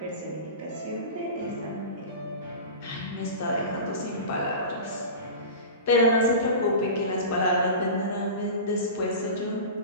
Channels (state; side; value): inverted; both; correlation -0.31